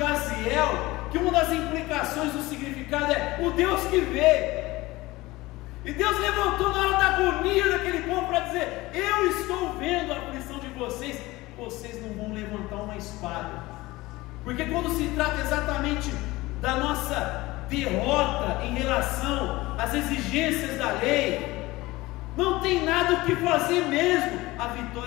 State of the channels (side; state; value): right; quieter; 19.9 dB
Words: que uma das implicações do significado é o Deus que vê. E Deus levantou na hora da agonia daquele povo para dizer, eu estou vendo a aflição de vocês, vocês não vão levantar uma espada, porque quando se trata exatamente da nossa derrota em relação às exigências da lei, não tem nada o que fazer mesmo, a